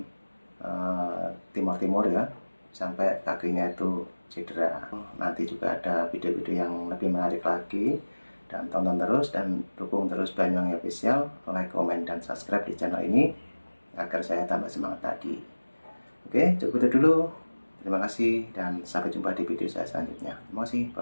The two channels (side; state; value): both; inverted; correlation -1.00